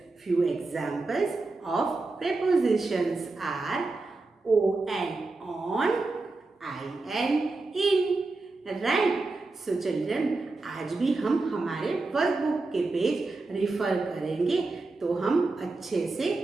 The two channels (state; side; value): quieter; left; 3.5 dB